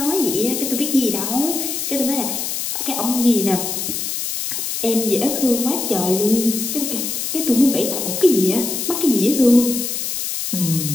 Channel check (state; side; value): noise; left; hiss, 3 dB below the sound